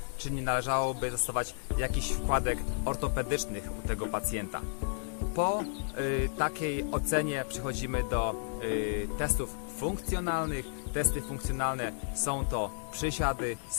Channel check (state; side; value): silent; right; digital silence